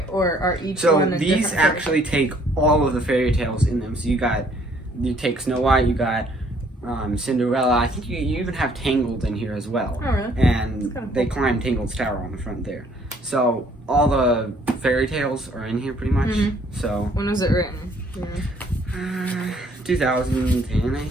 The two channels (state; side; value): normal; both; correlation 0.62